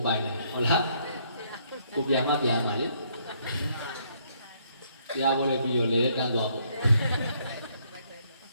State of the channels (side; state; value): both; inverted; correlation -0.69